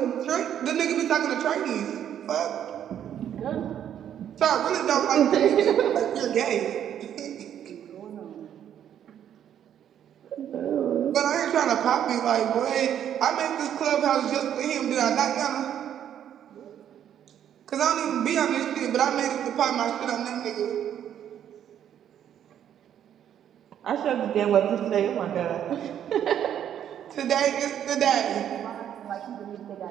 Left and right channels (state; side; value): quieter; left; 9.9 dB